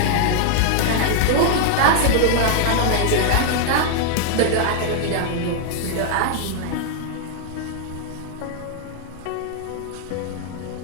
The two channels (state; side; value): different; both; correlation 0.00